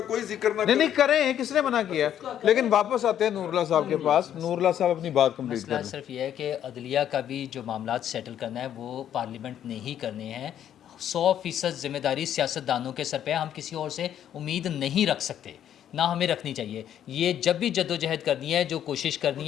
कोई जिक्र ना करे। नहीं करें, किसने मना किया? लेकिन वापस आते हैं नूरुल्लाह साहब के पास। नूरुल्लाह साहब अपनी बात कंप्लीट मसला करें। सिर्फ यह है कि अदलिया का भी जो मामला सेटल करना है वो पार्लियामेंट ने ही करने हैं। 100% जिम्मेदारी सियासतदानों के सर पे है, हम किसी और से उम्मीद नहीं रख सकते, ना हमें रखनी चाहिए। ये जब भी जद्दोजहद करनी है, जो कोशिश करनी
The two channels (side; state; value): right; quieter; 10.3 dB